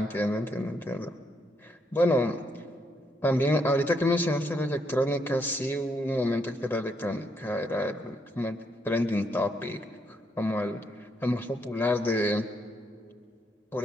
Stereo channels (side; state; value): both; normal; correlation 0.75